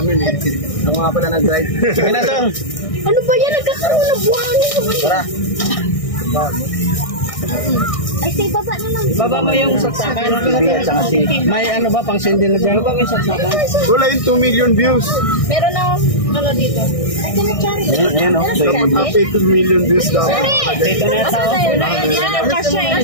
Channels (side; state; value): right; late; 1.6 ms